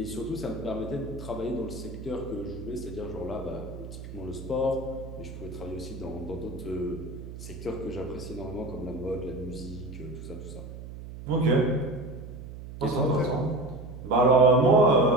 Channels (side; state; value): right; noise; hum, 11 dB below the sound